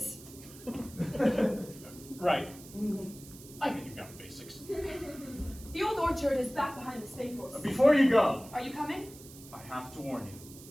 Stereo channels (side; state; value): right; noise; hiss, 18 dB below the sound